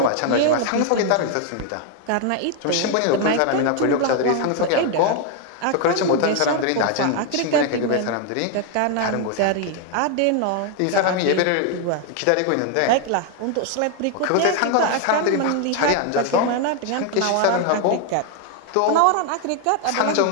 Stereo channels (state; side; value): different; both; correlation 0.01